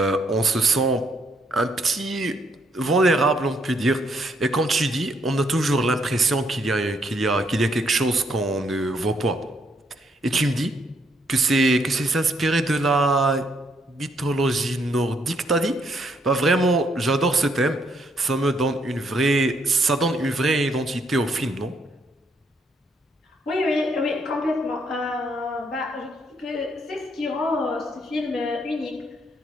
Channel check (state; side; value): normal; both; correlation 0.72